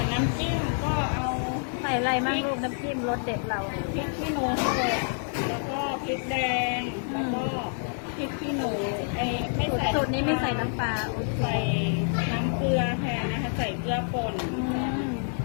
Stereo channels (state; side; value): silent; right; 60 dB below the other